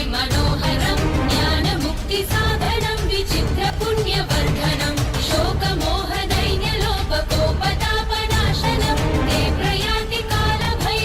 मनोहरं ज्ञानमुक्तिसाधनं विचित्रपुण्यवर्धनं शोकमोहदैन्यलोपकोपतापनाशनं ते प्रयान्ति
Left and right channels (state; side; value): identical; both; correlation 1.00